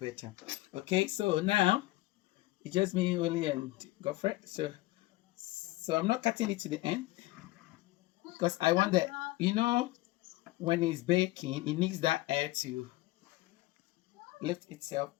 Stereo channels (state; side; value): quieter; right; 19.1 dB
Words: Okay, so now it's just me, Willie, and Godfrey. So I'm not cutting it to the end because I want that, when it's baking, it needs that air to lift itself